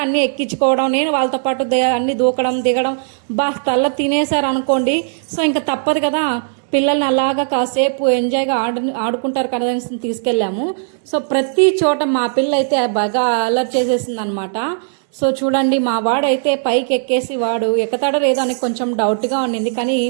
అన్ని ఎక్కించుకోవడం, నేను వాళ్ళతో పాటు అన్ని దూకడం దిగడం తల్ల తినేశారు అనుకోండి. సో ఇంకా తప్పదు కదా, పిల్లల్ని అలాగా కాసేపు ఎంజాయ్గా ఆడుకుంటారు కదా అని తీసుకెళ్ళాము. సో ప్రతి చోట మా పిల్ల అయితే బాగా అలర్ట్ చేసేసింది అనమాట. సో చూడండి, మా వాడైతే పైకి ఎక్కేసి వాడు ఎక్కుతాడో లేదో అని కొంచెం డౌట్గా ఉండింది, కానీ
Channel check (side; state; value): left; silent; digital silence